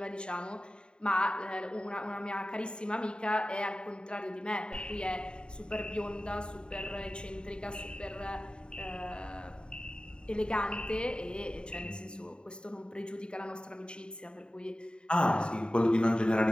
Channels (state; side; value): late; right; 0.050 ms